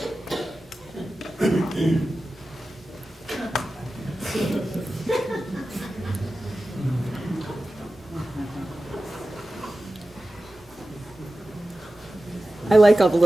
I like all the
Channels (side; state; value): both; normal; correlation 0.94